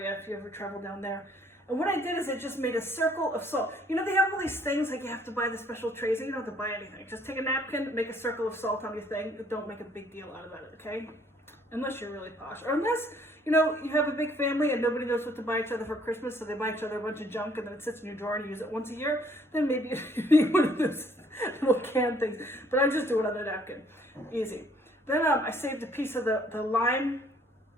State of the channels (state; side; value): normal; both; correlation 0.62